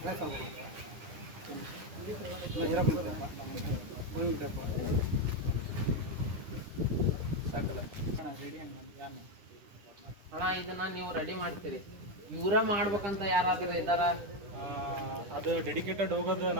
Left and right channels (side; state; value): left; late; 9.9 ms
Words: ಅಣ್ಣ, ಇದನ್ನ ನೀವು ರೆಡಿ ಮಾಡ್ತೀರಿ, ಇವರ ಮಾಡ್ಬೇಕಂತ ಯಾರಾದ್ರೂ ಇದ್ದಾರ? ಅದು ಡೆಡಿಕೇಟೆಡ್ ಹೋಗೋದು